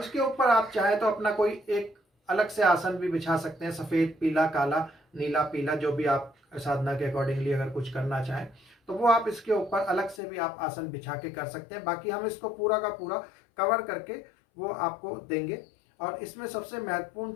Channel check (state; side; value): drops out; right; at 10.2 s